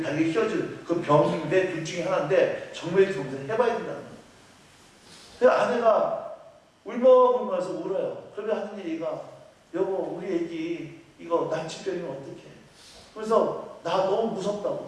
다리가 휘어지는 그 병인데 둘 중에 하나인데 정맥 검사를 해봐야 된다는 거예요. 그래서 아내가 울먹울먹해서 울어요. 그러면 하는 얘기가 여보 우리 애기 이거 난치병이면 어떡해. 그래서 나 너무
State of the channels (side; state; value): both; identical; correlation 1.00